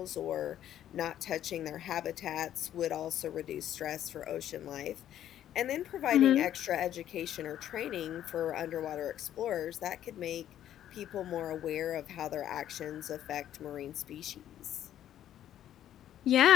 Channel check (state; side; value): quieter; right; 11.4 dB